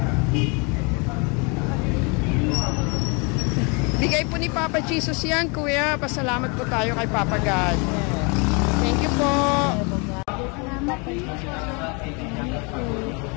Bigay po ni Papa Jesus yan, Kuya. Pasalamat po tayo kay Papa God. Thank you po.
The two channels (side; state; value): right; quieter; 31.9 dB